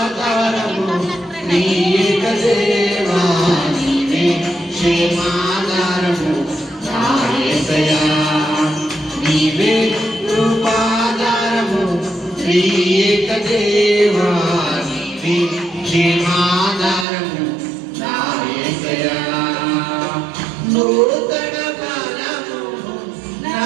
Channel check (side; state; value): left; drops out; at 17.1 s